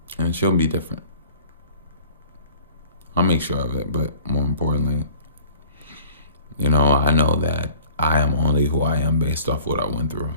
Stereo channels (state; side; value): inverted; both; correlation -0.49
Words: And she'll be different. I'll make sure of it, but more importantly, I know that I am only who I am based off what I went through.